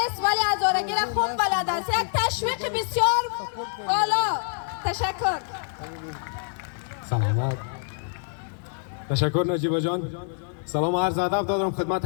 ولی هزارگی را خوب بلد است. یک تشویق بسیار بالا. تشکر. سلامت. تشکر نجیبه جان. سلام و عرض ادب دارم خدمت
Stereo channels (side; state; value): right; silent; 61 dB below the other